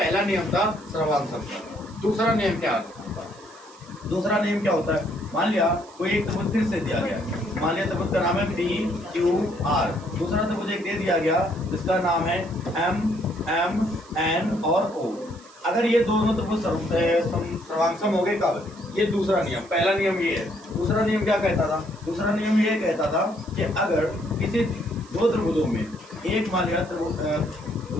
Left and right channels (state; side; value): noise; right; hiss, 24 dB below the sound